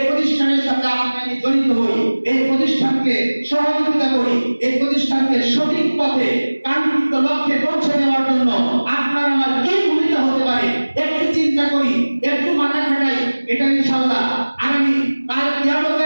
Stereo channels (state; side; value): inverted; both; correlation -1.00